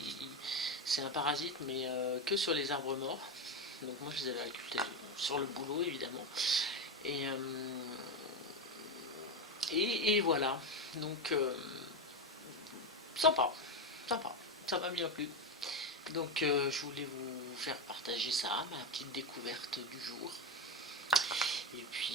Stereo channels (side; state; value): both; normal; correlation 0.14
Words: C'est un parasite, mais que sur les arbres morts. Donc moi je les avais récoltés sur le boulot évidemment. Et voilà. Donc sympa, ça m'a bien plu. Donc je voulais vous faire partager ça, ma petite découverte du jour. Et